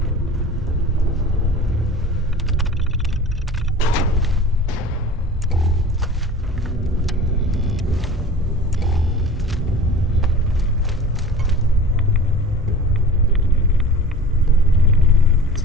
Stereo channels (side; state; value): both; normal; correlation 0.41